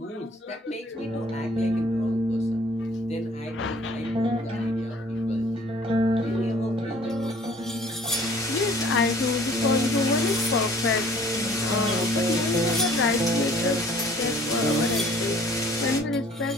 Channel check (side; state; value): both; normal; correlation 0.54